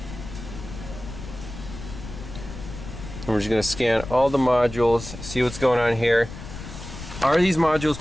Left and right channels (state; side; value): noise; left; rumble, 11 dB below the sound